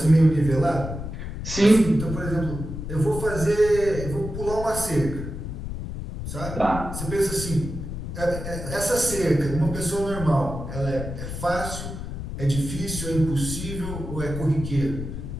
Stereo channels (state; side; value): noise; left; rumble, 7 dB below the sound